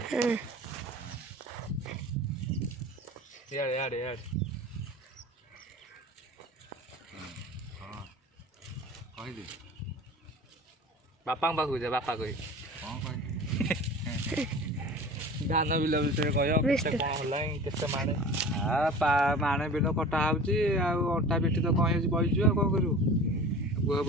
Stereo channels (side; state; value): both; normal; correlation 0.39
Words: बापा पाखु जा बापा कह धान बिल विषय कह कौन माणे माणे बिल कटा होटा पिठी तो कहीं बहीचु कौन करू बुह